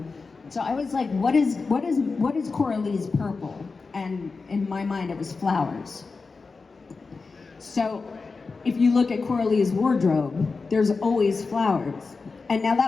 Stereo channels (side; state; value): right; quieter; 4.3 dB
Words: So I was like, what is Coralie's purple? And in my mind, it was flowers. So if you look at Coralie's wardrobe, there's always flowers. And now